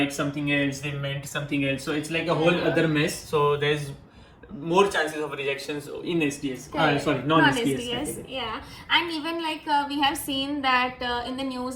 something else, they meant something else. So it's like a whole other mess. So there's more chances of rejections in SDS. Non-SDS. Yeah, and even like we have seen that in the news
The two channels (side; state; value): both; identical; correlation 1.00